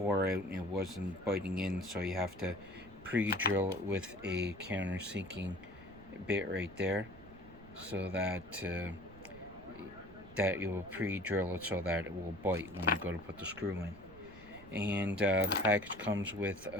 out and it wasn't biting in, so you have to pre-drill it with a countersinking bit right there, so that you will pre-drill it so that it will bite when you go to put the screw in. And the package comes with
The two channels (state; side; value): noise; right; rumble, 19 dB below the sound